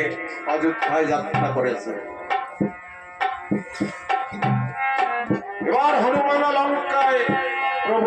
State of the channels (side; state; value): both; identical; correlation 1.00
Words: অযোধ্যায় যাত্রা করেছে। এবার হনুমান লঙ্কায়